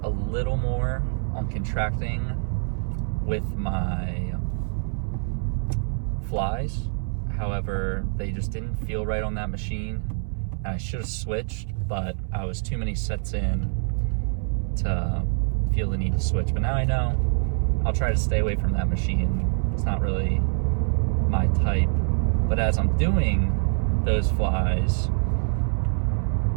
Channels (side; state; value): left; silent; 62 dB below the other